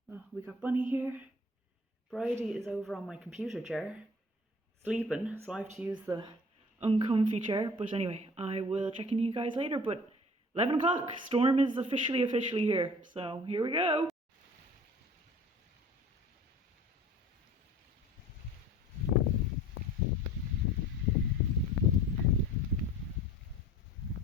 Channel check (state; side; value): normal; both; correlation 0.46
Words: Oh, we got Bunny here. Bridie is over on my computer chair sleeping, so I have to use the uncomfy chair. But anyway, I will check in you guys later. But 11 o'clock, storm is officially here. So here we go.